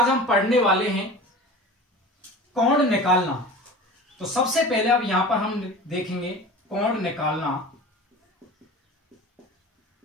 हम पढ़ने वाले हैं कोण निकालना। तो सबसे पहले अब यहां पर हम देखेंगे कोण निकालना।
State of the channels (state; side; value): normal; both; correlation 0.36